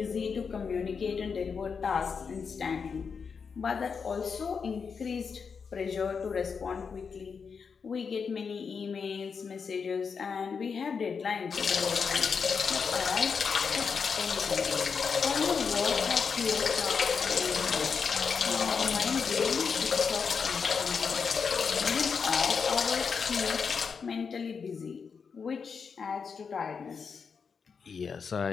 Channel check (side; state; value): right; quieter; 5.8 dB